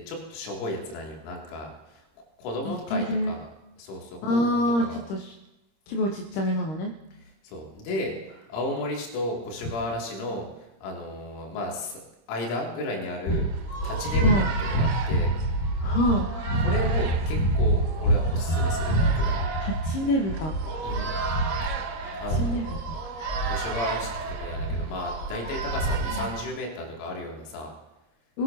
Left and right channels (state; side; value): late; right; 26 ms